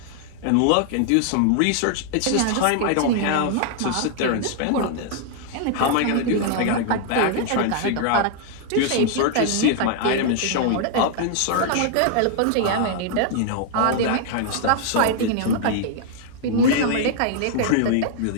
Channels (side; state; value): both; different; correlation 0.00